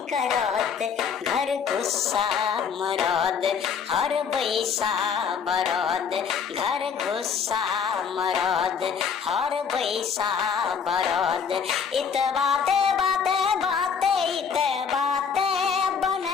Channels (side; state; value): right; quieter; 6.7 dB